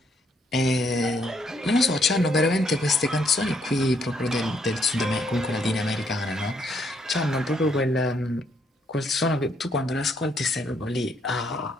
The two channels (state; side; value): normal; both; correlation 0.72